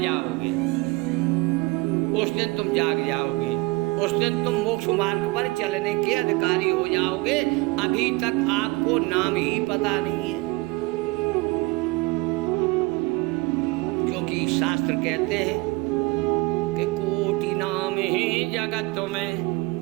जाओगे उस दिन तुम जाग जाओगे, उस दिन तुम मोक्ष मार्ग पर चलने के अधिकारी हो जाओगे। अभी तक आपको नाम ही पता नहीं है, क्योंकि शास्त्र कहते हैं कि कोटि नाम ही जगत में,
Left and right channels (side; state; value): left; quieter; 24.2 dB